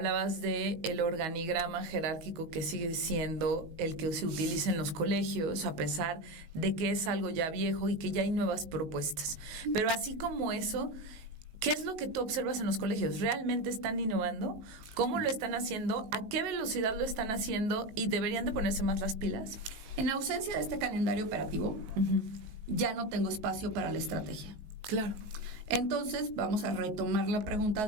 de el organigrama jerárquico que sigue siendo el que se utiliza en los colegios, a pesar de que es algo ya viejo y que ya hay nuevas propuestas. Pero así como eso, ¿qué es lo que tú observas en los colegios? ¿Realmente están innovando? ¿Cómo lo están haciendo? ¿A qué velocidad lo están haciendo? ¿Y deberían de ponerse más las pilas? En ausencia de este calendario operativo, ya no tengo espacio para la estrategia. Claro. Entonces, vamos a retomar la pregunta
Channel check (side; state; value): left; late; 19 ms